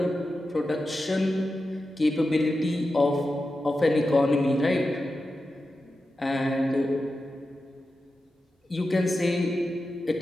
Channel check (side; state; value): both; normal; correlation 0.91